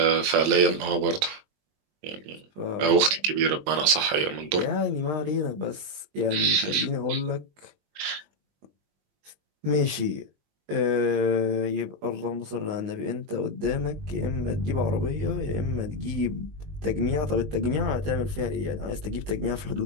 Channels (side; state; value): left; late; 21 ms